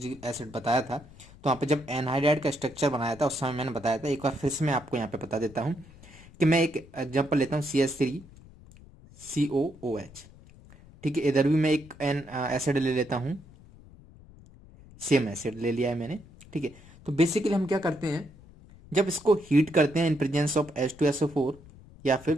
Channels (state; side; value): noise; left; rumble, 22 dB below the sound